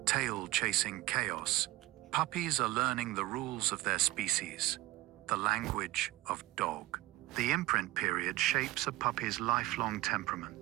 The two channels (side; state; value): left; quieter; 18.0 dB